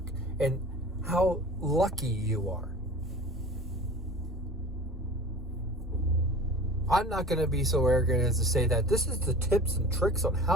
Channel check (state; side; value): normal; both; correlation 0.40